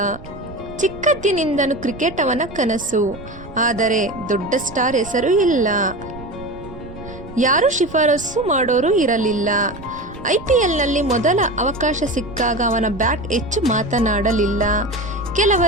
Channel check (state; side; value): noise; right; rumble, 15 dB below the sound